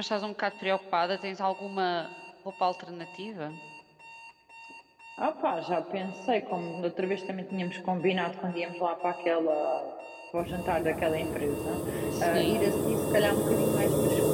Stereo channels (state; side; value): identical; both; correlation 1.00